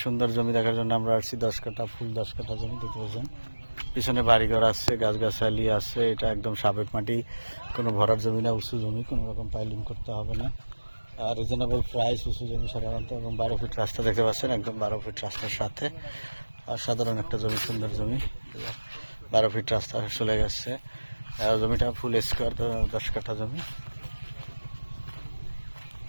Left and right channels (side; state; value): both; inverted; correlation -1.00